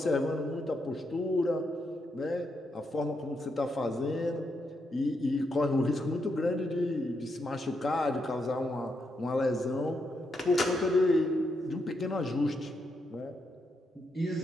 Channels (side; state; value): both; normal; correlation 0.81